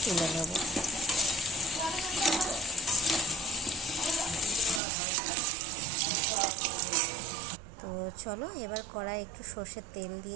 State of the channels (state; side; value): drops out; left; at 4.8 s